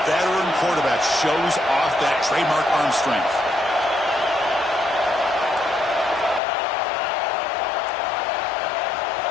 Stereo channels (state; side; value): drops out; right; at 6.4 s